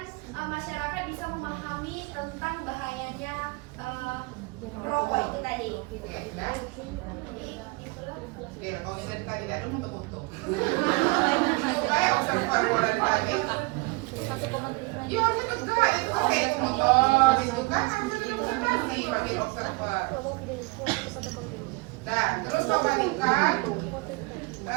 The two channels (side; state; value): left; quieter; 26.2 dB